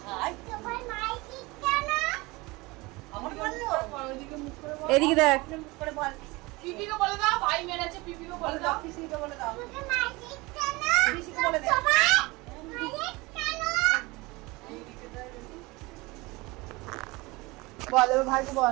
এদিকে দেখ, পিপিকে বলে দাও, ভাই মেরেছে, পিপিকে বলে দাও। পিসিকে বলে দাও, বলে দে। বল এবার ভাইকে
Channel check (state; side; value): quieter; left; 23.2 dB